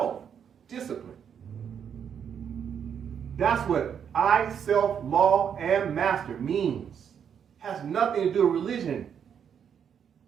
That's what I, self, law, and master means. Has nothing to do with religion.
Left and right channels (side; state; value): left; quieter; 7.9 dB